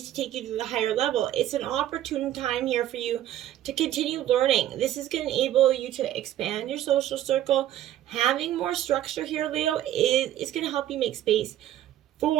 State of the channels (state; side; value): quieter; left; 12.6 dB